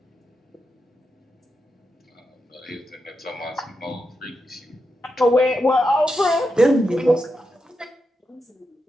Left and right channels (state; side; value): normal; both; correlation 0.86